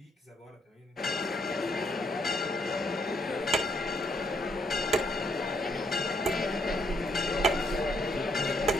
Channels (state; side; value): normal; both; correlation 0.71